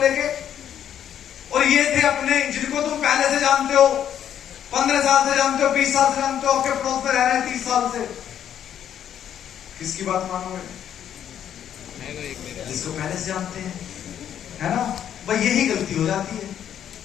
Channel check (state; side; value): quieter; right; 9.8 dB